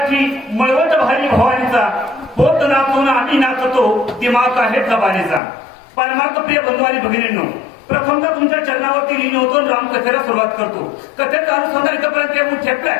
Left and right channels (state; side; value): drops out; right; at 5.4 s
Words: मळवट भारी भवानीचा, पोत नाचून आम्ही नाचतो, दिमाग आहे जबानीचा. परमार्थ प्रिय बंधू आणि भगिनींनो, प्रथमतः तुमच्या चरणावरती लीन होतो, रामकथेला सुरुवात करतो. कथेचा अनुसंधान इथपर्यंत येऊन ठेपलाय.